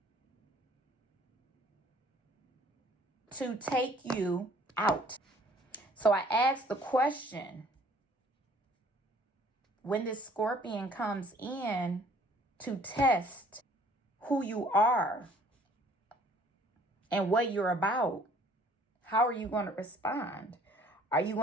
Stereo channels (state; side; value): normal; both; correlation 0.57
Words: to take you out. So I asked the question, when this scorpion comes in to test who you are and what you're about, how are you going to respond? Are you